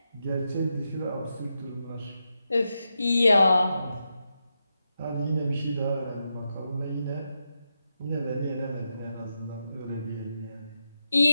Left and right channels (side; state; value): both; inverted; correlation -0.86